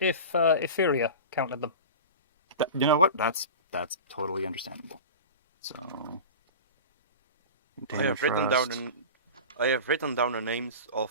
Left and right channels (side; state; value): both; inverted; correlation -0.32